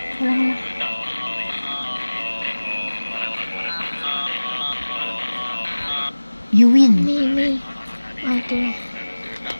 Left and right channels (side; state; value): both; inverted; correlation -1.00